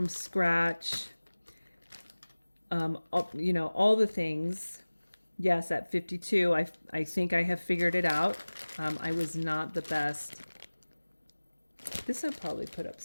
scratch, all the things. Yes, at 52, I think I have figured it out. I was not the best. This I'll probably put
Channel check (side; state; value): both; inverted; correlation -1.00